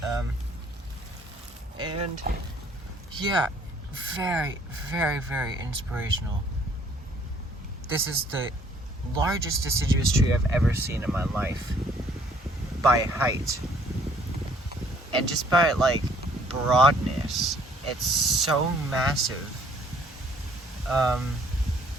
And yeah, very, very, very inspirational. This is the largest deciduous tree I've ever seen in my life, by height. And just by like broadness, it's so massive.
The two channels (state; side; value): normal; both; correlation 0.61